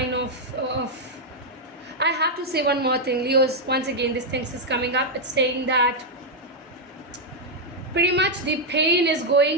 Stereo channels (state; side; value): normal; both; correlation -0.01